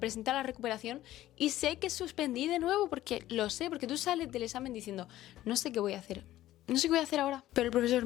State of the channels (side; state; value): right; quieter; 14.5 dB